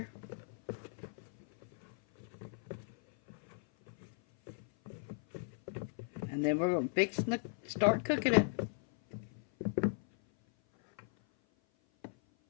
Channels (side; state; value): right; silent; 53 dB below the other